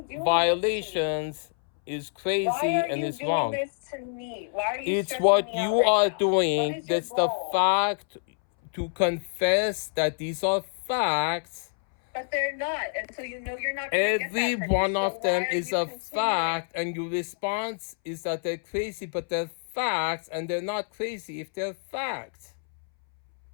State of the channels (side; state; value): right; silent; 60 dB below the other